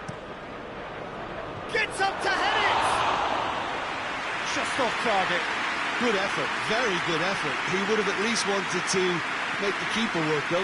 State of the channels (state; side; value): identical; both; correlation 1.00